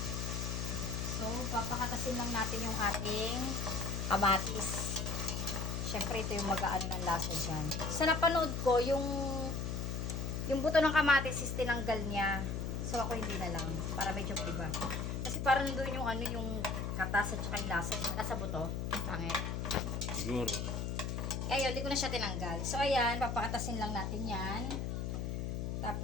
So, papakatasin lang natin yung ating kamatis. Syempre, ito yung mag-aano ng lasa dyan. Sa napanood ko, yung buto ng kamatis is tinanggal niya. So, ako hindi na lang. Para medyo iba. Kasi parang doon yung yung katas at saka yung lasa. Nasa buto. Pangit. Siguro. Kaya yun, hindi ko na siya tinanggal. So, ayan, papakatasin lang natin yan.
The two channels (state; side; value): noise; left; hum, 2 dB below the sound